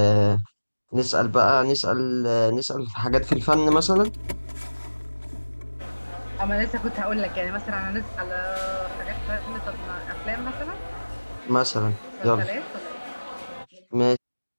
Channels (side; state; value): both; inverted; correlation -1.00